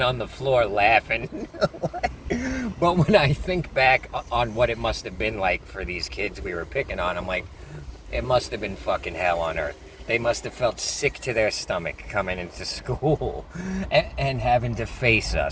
on the floor laughing. But when I think back on what it must have been like for these kids we were picking on, I'm like, it must have been fucking hell on earth. They must have felt sick to their stomach coming into school and having to face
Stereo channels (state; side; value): identical; both; correlation 1.00